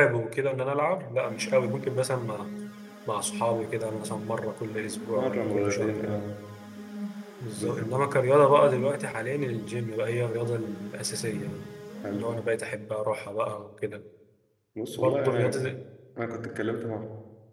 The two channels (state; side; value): identical; both; correlation 1.00